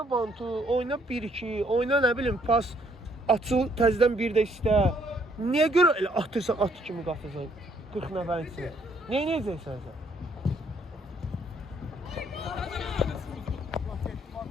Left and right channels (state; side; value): normal; both; correlation 0.67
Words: bantu, oyna 1-2, oyna nə bilim pas. Açıl, təzədən bir də istə. Niyə görə elə atırsan, at kimi qatırsan 40 nəfərin içinə? Neyə necəksən sən?